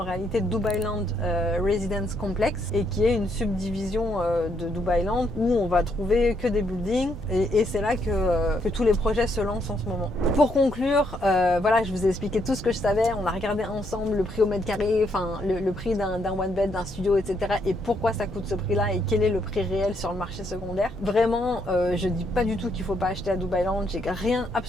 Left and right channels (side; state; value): both; normal; correlation 0.74